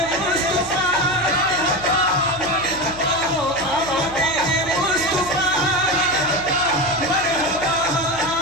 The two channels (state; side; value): noise; right; hum, 16 dB below the sound